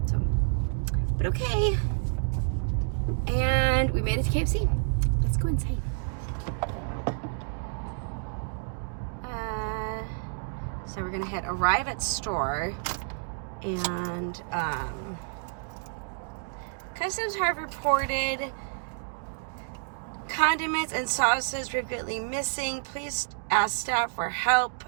So, but okay. And we made it to KFC. Let's go inside. So we're gonna arrive at store, and customs have reported condiments and sauces frequently missing. Please ask staff for help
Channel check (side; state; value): left; silent; digital silence